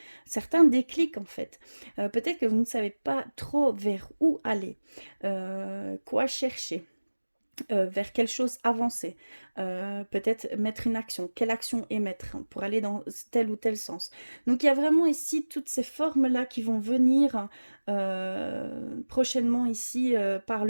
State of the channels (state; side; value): inverted; both; correlation -1.00